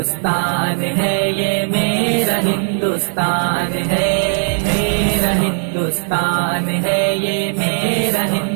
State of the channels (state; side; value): silent; left; 64 dB below the other